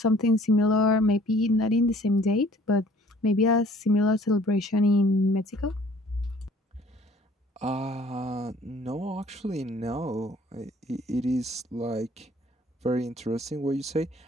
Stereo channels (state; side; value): normal; both; correlation 0.55